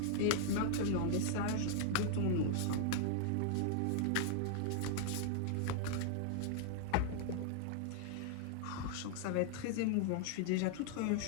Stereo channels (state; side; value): different; both; correlation -0.01